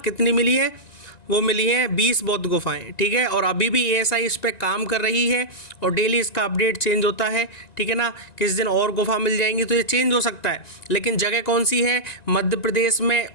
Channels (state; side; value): late; right; 1.9 ms